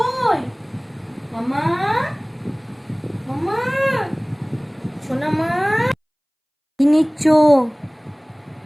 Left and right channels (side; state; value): both; identical; correlation 1.00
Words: মামা মামা সোনা মা কি নিচ্ছ।